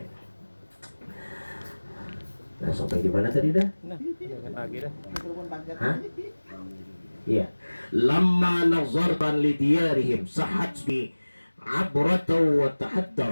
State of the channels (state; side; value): inverted; both; correlation -1.00